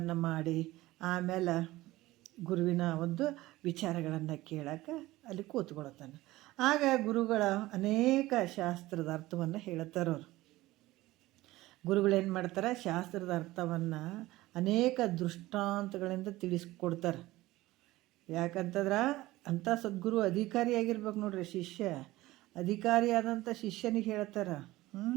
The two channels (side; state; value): left; quieter; 17.9 dB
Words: ಮಾಡಿ ಆಮೇಲೆ ಗುರುವಿನ ಒಂದು ವಿಚಾರಗಳನ್ನು ಕೇಳೋಕೆ ಅಲ್ಲಿ ಕೂತ್ಕೊಳ್ತಾನೆ. ಆಗ ಗುರುಗಳ ಅನೇಕ ಶಾಸ್ತ್ರದ ಅರ್ಥವನ್ನು ಹೇಳ್ತಾರವ್ರು. ಗುರುಗಳೇನು ಮಾಡ್ತಾರೆ, ಶಾಸ್ತ್ರದ ಅರ್ಥವನ್ನು ಅನೇಕ ದೃಷ್ಟಾಂತಗಳಿಂದ ತಿಳಿಸ್ಕೊಡ್ತಾರೆ. ಯಾಕಂತಂದ್ರೆ ಅಂಥ ಸದ್ಗುರು ಅಧಿಕಾರಿಯಾಗಿರ್ಬೇಕು ನೋಡ್ರಿ. ಅಧಿಕಾರಿಯಾದಂಥ ಶಿಷ್ಯನಿಗೆ ಹೇಳ್ತಾರೆ.